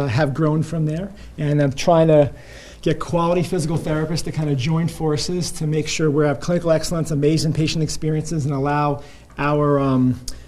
grown from there. And I'm trying to get quality physical therapists to kind of join forces to make sure we have clinical excellence, amazing patient experiences, and allow our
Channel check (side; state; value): both; identical; correlation 1.00